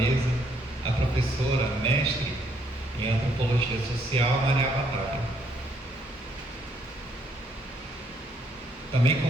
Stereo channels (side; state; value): both; normal; correlation 0.70